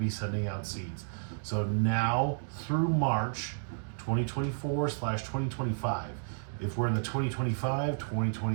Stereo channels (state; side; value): silent; left; digital silence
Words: sending out seeds. So now through March 2024/2025. If we're in the